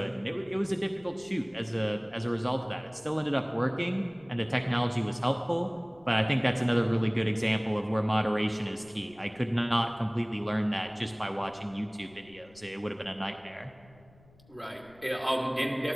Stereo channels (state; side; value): noise; left; rumble, 27 dB below the sound